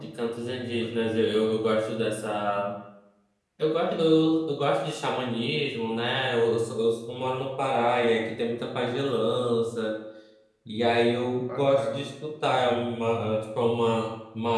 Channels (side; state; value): both; identical; correlation 1.00